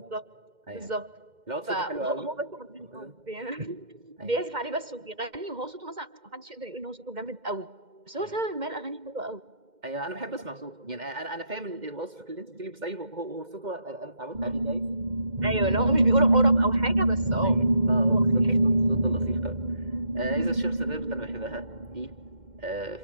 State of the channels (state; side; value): late; left; 2.1 ms